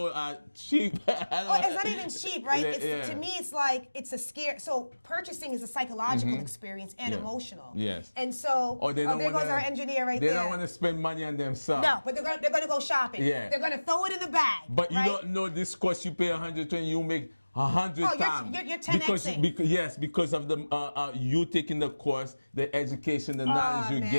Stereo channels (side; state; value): both; inverted; correlation -1.00